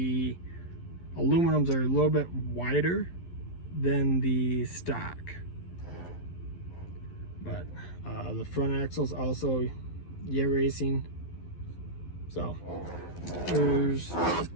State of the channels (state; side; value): late; right; 11 ms